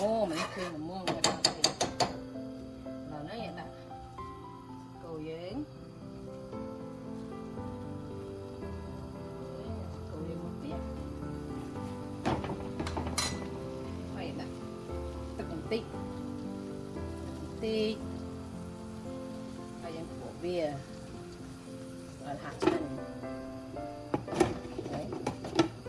មនេះគឺល្មមមកដល់នេះដល់នេះដាក់គោយើងមកទៀតហើយដាក់ទឹកបន្តិចហើយយើងបុកវាឲ្យហាក់ឆ្ងាញ់ហើយ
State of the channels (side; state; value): both; identical; correlation 1.00